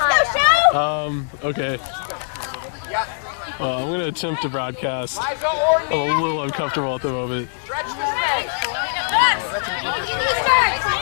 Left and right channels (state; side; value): silent; right; digital silence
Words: show. Okay. I'm going to attempt to broadcast. I'm a little uncomfortable at the moment.